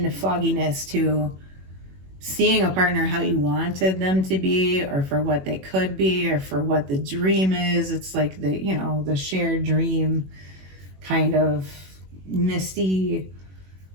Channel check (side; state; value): left; late; 21 ms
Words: fogginess to seeing a partner how you wanted them to be, or for what they could be, or for what the dream is. It's like the, you know, the shared dream, kind of misty,